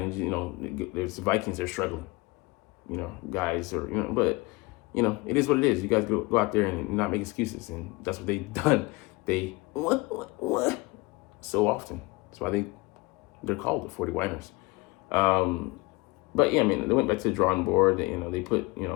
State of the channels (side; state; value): right; quieter; 24.1 dB